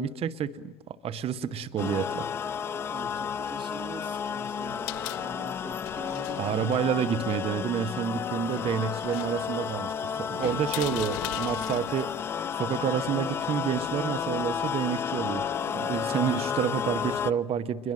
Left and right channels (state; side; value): normal; both; correlation 0.45